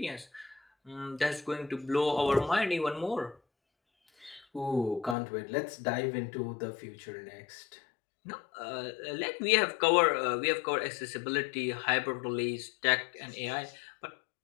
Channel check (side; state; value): right; drops out; at 5.2 s